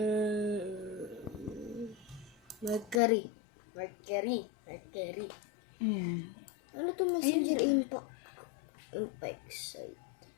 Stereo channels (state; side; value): drops out; right; at 3.0 s